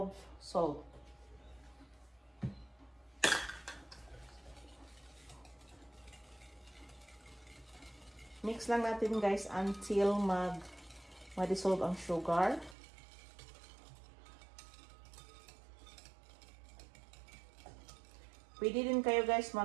salt. Mix lang natin guys until ma-dissolve ang sugar. Pwede din kayo guys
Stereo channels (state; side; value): drops out; left; at 12.8 s